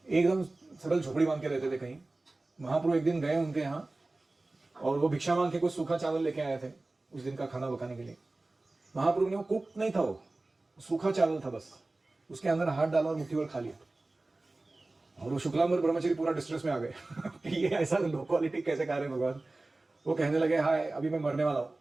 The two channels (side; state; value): left; quieter; 3.0 dB